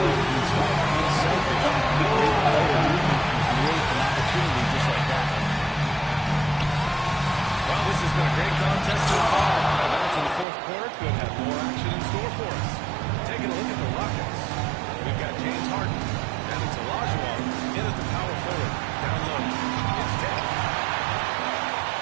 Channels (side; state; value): left; drops out; at 10.5 s